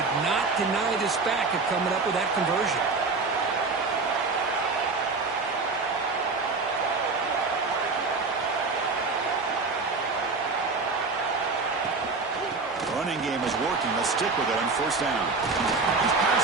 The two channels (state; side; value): quieter; left; 4.1 dB